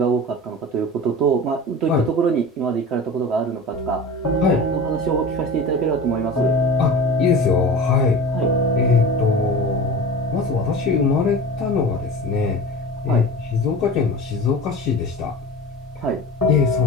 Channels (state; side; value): normal; both; correlation 0.34